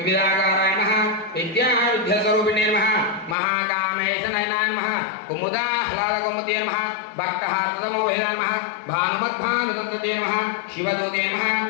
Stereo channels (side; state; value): right; drops out; at 3.4 s